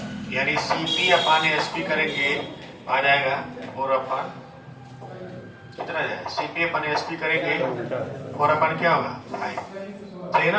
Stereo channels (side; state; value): both; identical; correlation 1.00